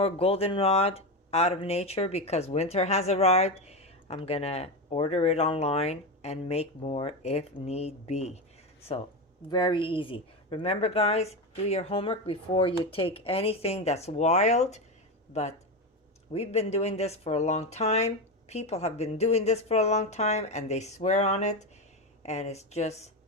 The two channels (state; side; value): normal; both; correlation 0.16